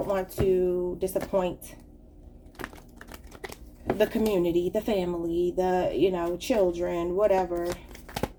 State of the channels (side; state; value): both; identical; correlation 1.00